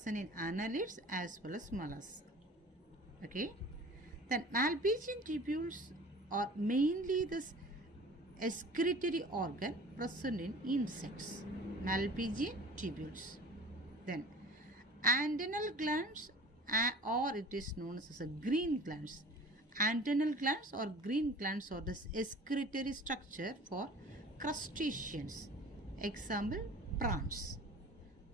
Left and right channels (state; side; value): normal; both; correlation 0.43